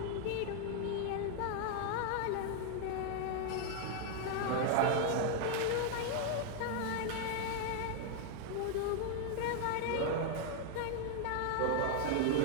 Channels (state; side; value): different; both; correlation 0.00